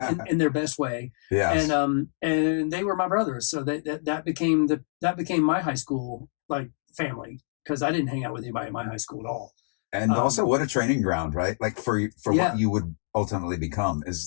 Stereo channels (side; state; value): right; silent; digital silence